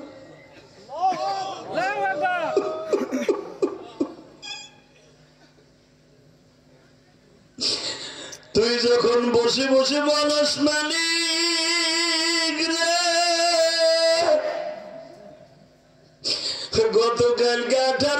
তুই যখন বসে বসে বলস মালিক রে গতকালকে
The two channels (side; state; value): both; identical; correlation 1.00